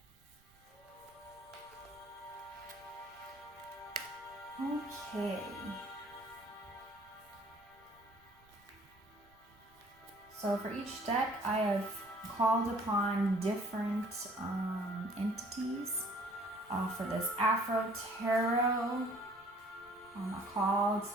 Okay. So for each deck, I have called upon different entities. For this Afro Tarot, I called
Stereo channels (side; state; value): right; noise; rumble, 30 dB below the sound